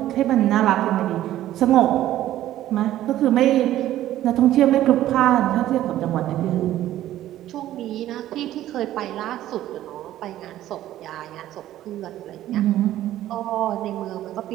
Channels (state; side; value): quieter; left; 13.5 dB